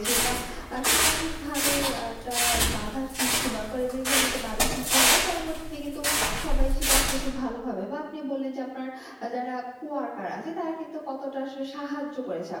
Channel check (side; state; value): both; identical; correlation 1.00